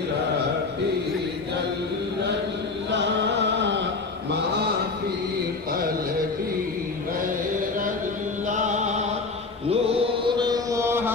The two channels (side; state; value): right; quieter; 4.0 dB